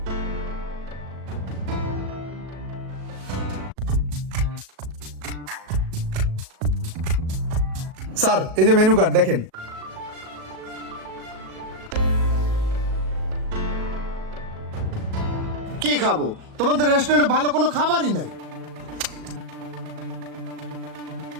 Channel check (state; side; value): late; left; 37 ms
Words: স্যার এই যে মেনু কার্ড দেখেন। কি খাবো? তোমাদের রেস্টুরেন্টে ভালো কোনো খাবারই নাই।